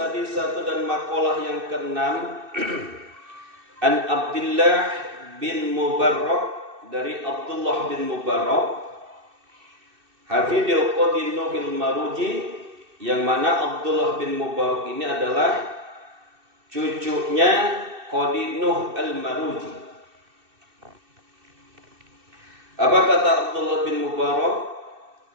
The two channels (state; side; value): late; left; 2.6 ms